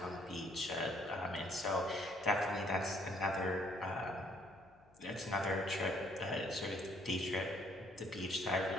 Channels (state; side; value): noise; left; hum, 29 dB below the sound